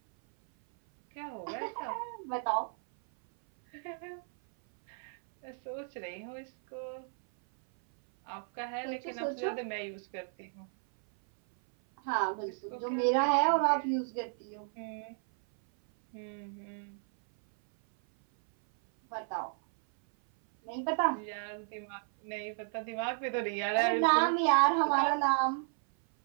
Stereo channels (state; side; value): silent; left; 56 dB below the other